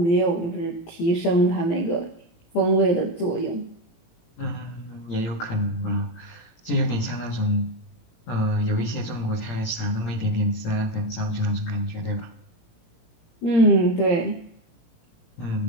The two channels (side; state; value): right; late; 18 ms